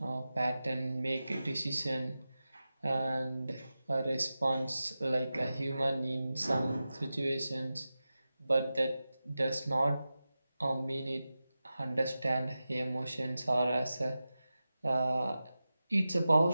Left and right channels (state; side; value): inverted; both; correlation -0.94